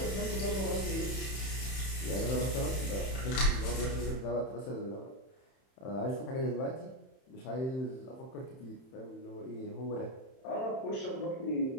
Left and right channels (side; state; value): right; late; 31 ms